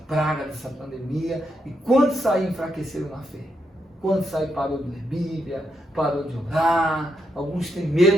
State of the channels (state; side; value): normal; both; correlation 0.81